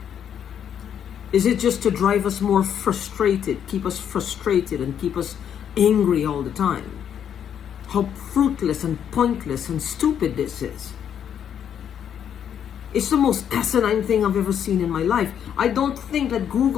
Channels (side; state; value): right; quieter; 8.8 dB